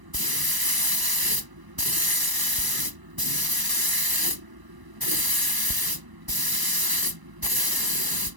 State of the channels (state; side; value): late; left; 1.0 ms